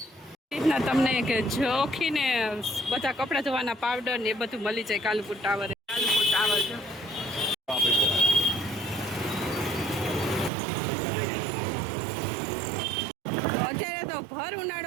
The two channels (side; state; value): left; drops out; at 10.5 s